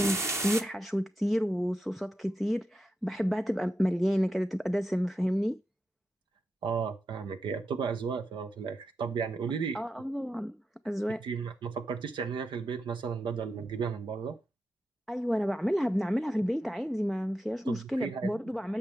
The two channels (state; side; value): normal; both; correlation 0.87